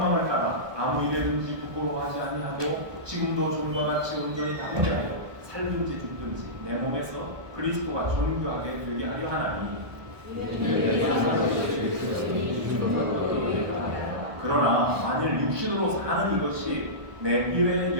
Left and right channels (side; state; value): left; late; 1.2 ms